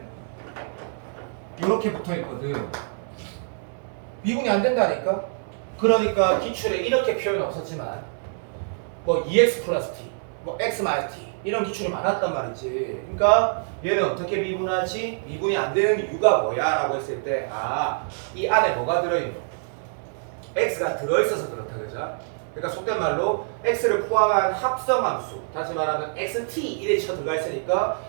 이렇게 붙어있거든. 미분이 안 된다니까? 그러니까 기출에 이렇게 표현 없었지만 뭐 2x 플러스 t, 뭐 x 마이너스 t 이런 기출이 많았단 말이지. 그러니까 얘는 어떻게 미분하지? 미분이 안 되는 이유가 뭐야? 라고 했을 때 이 안에 뭐가 들어있는? x가 들어있어서 그렇다 그죠? 그러니까 속된 말로 x를 포함한 합성함수, 다시 말하면 xt 이래 쳐 들어가 있으니까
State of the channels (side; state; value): left; silent; digital silence